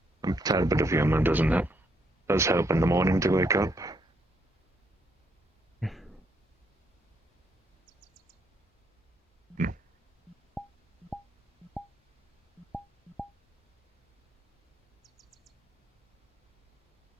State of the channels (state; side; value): normal; both; correlation 0.74